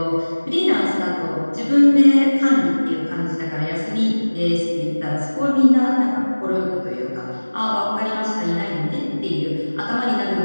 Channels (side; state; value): both; inverted; correlation -1.00